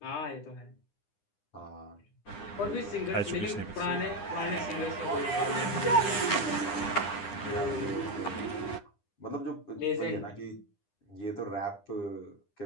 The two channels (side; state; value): right; late; 9.9 ms